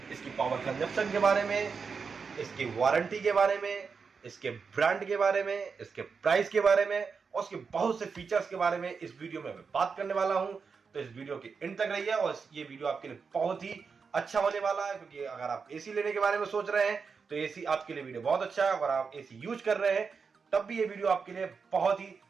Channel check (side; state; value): left; quieter; 5.4 dB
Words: इसकी पावर कंजप्शन के बारे में, इसकी वारंटी के बारे में, इसके ब्रांड के बारे में, इसके प्राइस के बारे में और उसके बहुत से फीचर्स के बारे में इस वीडियो में मैं बात करने वाला हूं। तो इस वीडियो की एंड तक रहिए और ये वीडियो आपके लिए बहुत ही अच्छा होने वाला है, क्योंकि अगर आप एसी लेने के बारे में सोच रहे हैं तो एसी आपके लिए वीडियो बहुत अच्छा है। अगर आप एसी यूज कर रहे हैं तब भी ये वीडियो आपके लिए बहुत ही